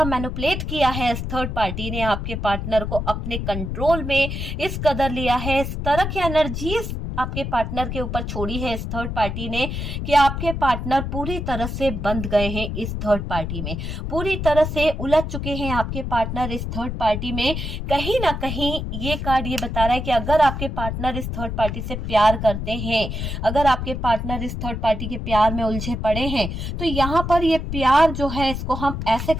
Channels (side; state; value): left; noise; rumble, 4 dB below the sound